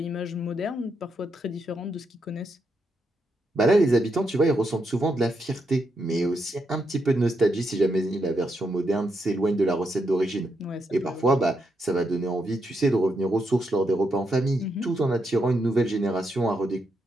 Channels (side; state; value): both; normal; correlation 0.81